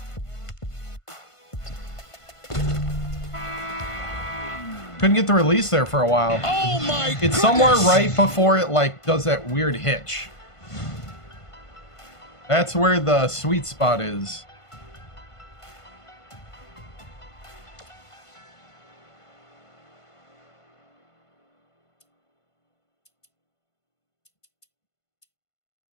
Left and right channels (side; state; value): right; late; 1.5 ms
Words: Couldn't get the release there for a while. Oh my goodness! It's somewhere right before it like does that weird hitch. That's where the sweet spot is.